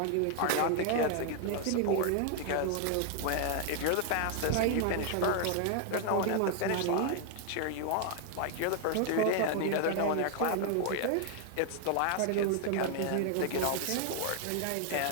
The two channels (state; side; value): different; both; correlation 0.00